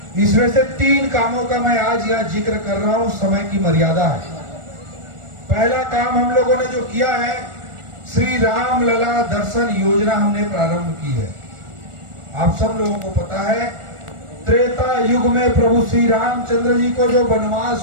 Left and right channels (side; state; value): left; late; 1.4 ms